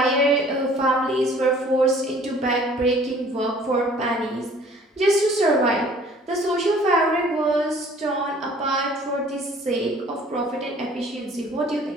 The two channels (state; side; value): normal; both; correlation 0.53